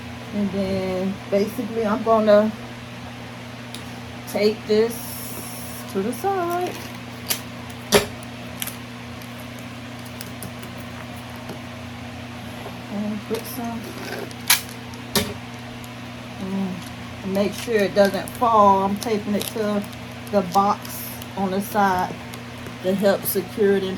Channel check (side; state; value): both; identical; correlation 1.00